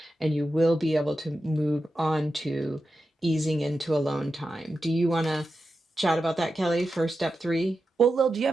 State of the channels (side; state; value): both; normal; correlation 0.90